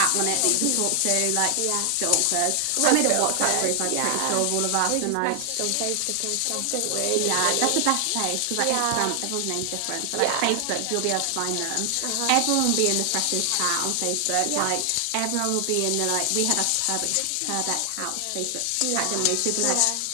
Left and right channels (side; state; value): both; different; correlation 0.00